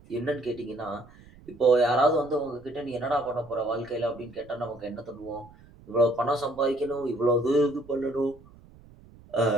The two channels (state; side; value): noise; right; rumble, 23 dB below the sound